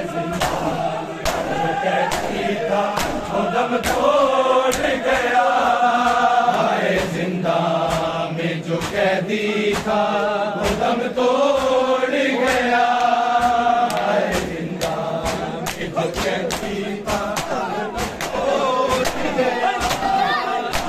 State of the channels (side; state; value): both; identical; correlation 1.00